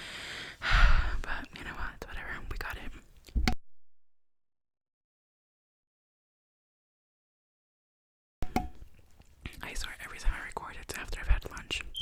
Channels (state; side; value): identical; both; correlation 1.00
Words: But you know what? Whatever. We got it. I swear every time I record it's after I've had lunch.